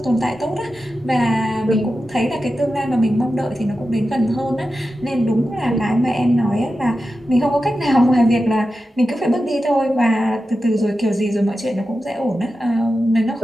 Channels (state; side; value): normal; both; correlation 0.91